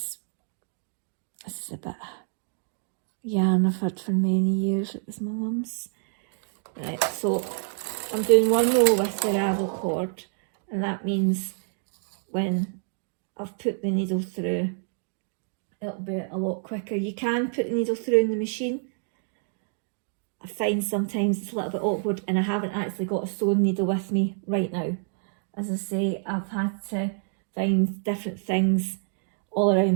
a bit of yarn I've had for many years. It was my mum's. Right, so I'm doing 1 row with the ravel cord, and that means when I've put the needle through, it'll be a lot quicker. You can put the needle through in the machine. I find sometimes it's a little bit awkward, and I haven't actually got a sewing needle with me right now. As I say, I've had to find different things all around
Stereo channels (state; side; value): silent; left; digital silence